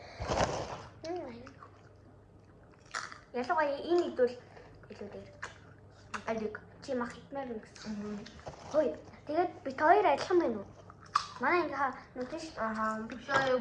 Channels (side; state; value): both; identical; correlation 1.00